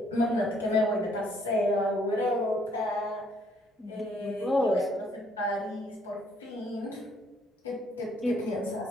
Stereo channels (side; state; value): both; normal; correlation 0.66